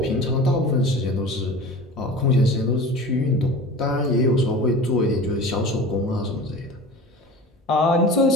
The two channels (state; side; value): normal; both; correlation 0.37